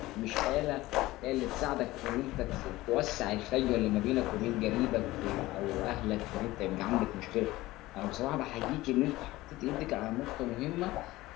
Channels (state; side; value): quieter; right; 18.1 dB